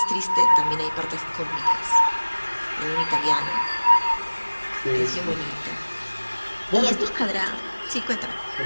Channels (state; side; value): inverted; both; correlation -1.00